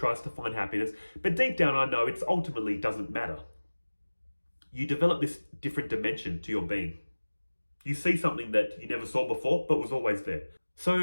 to find happiness. But deep down, I know it ultimately doesn't matter. You develop this different dimension to your being. You see something that you never saw before, but was always there.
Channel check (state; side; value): inverted; both; correlation -1.00